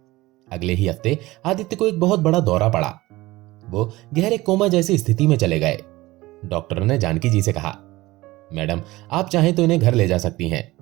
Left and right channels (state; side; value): quieter; left; 19.1 dB